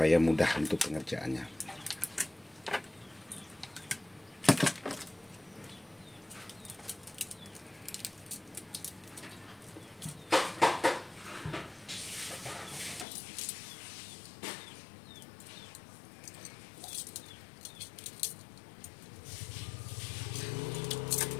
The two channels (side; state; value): right; drops out; at 13.1 s